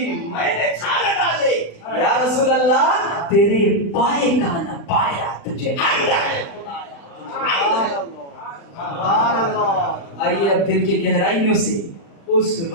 میں نے چھان ڈالے. یا رسول اللہ تیرے پائے کا نہ پایا تجھے حمد ہے خدایا. آئیے اب دل کی گہرائیوں سے اس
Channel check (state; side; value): late; right; 35 ms